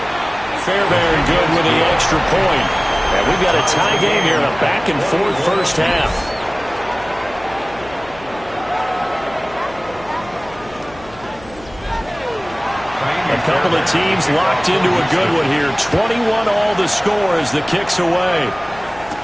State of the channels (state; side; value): noise; left; hum, 21 dB below the sound